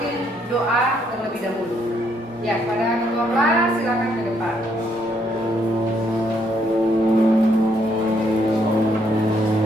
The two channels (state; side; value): normal; both; correlation 0.72